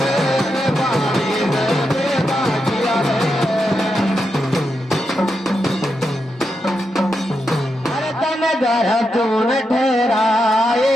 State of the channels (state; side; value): normal; both; correlation 0.85